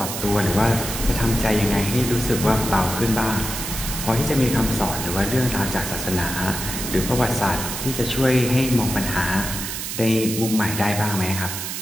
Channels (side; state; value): right; noise; hiss, 5 dB below the sound